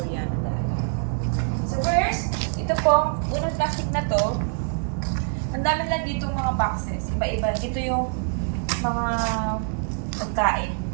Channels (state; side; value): silent; left; digital silence